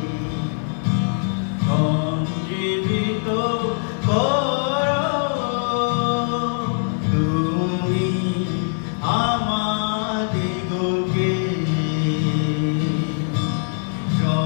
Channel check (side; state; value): right; silent; 64 dB below the other